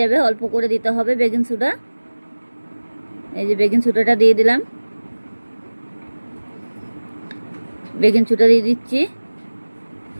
অল্প করে দিতে হবে বেকিং সোডা। এই যে বেকিং সোডাটা দিয়ে দিলাম, বেকিং সোডা দিয়ে দিচ্ছি।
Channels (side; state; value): both; inverted; correlation -1.00